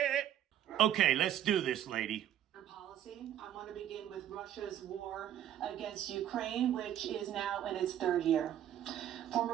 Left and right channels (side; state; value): left; quieter; 11.1 dB